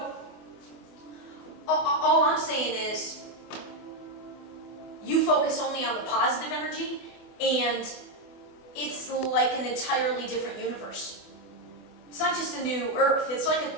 all I'm saying is you focus only on the positive energy, and it's like an entirely different universe. It's not just a new Earth. It's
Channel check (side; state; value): right; late; 24 ms